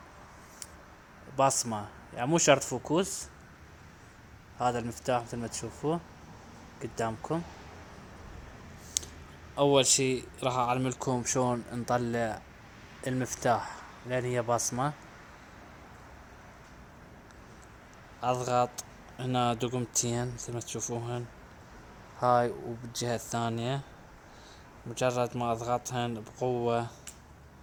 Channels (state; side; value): identical; both; correlation 1.00